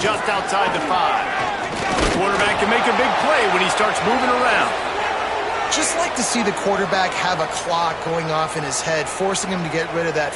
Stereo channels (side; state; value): both; identical; correlation 1.00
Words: outside the 5. The quarterback can make a big play when he starts moving around. Just like to see the quarterback have a clock going off in his head, forcing him to get rid of that